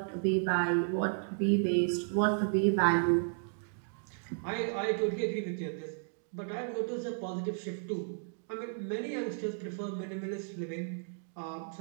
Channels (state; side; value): silent; left; digital silence